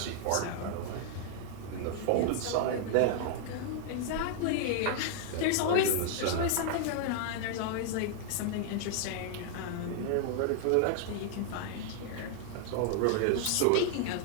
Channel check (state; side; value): different; both; correlation 0.00